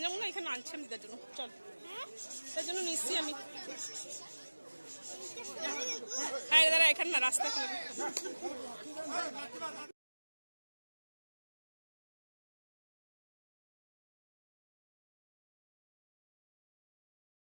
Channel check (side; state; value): both; inverted; correlation -1.00